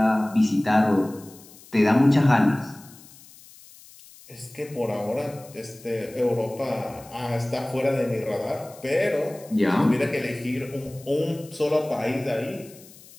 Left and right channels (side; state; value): left; noise; hiss, 22 dB below the sound